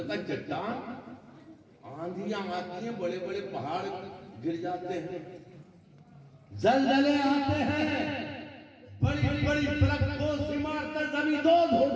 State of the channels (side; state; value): both; identical; correlation 1.00